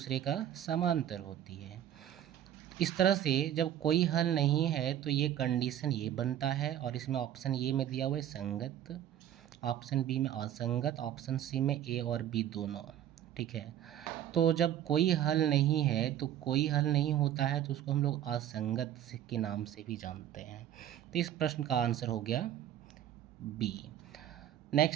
का समांतर होती है। इस तरह से जब कोई हल नहीं है तो ये कंडीशन ये बनता है, और इसमें ऑप्शन ए में दिया हुआ है संगत, ऑप्शन बी में असंगत, ऑप्शन सी में ए और बी दोनों। ठीक है, तो जब कोई हल नहीं है तो कोई हल नहीं होता है तो उसको हम लोग असंगत के नाम से भी जानते हैं। तो इस प्रश्न का आंसर हो गया बी।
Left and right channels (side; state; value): left; quieter; 11.1 dB